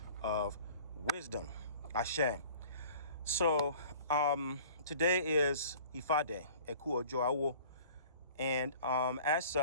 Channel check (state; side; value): inverted; both; correlation -0.47